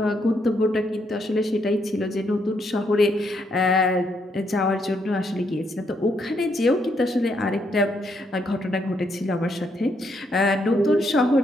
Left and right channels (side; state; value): both; normal; correlation 0.75